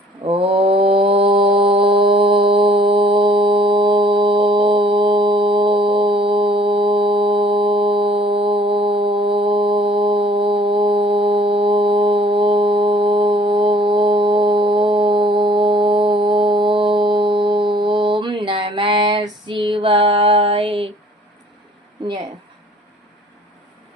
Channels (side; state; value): both; normal; correlation 0.57